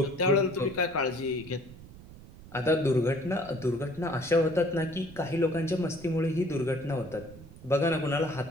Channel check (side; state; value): right; noise; rumble, 18 dB below the sound